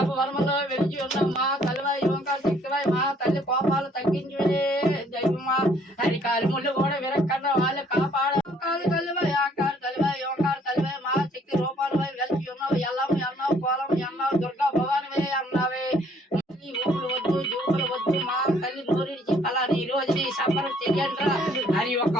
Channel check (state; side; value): normal; both; correlation 0.62